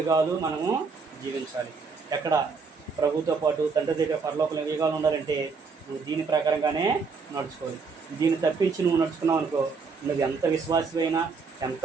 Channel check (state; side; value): quieter; left; 4.9 dB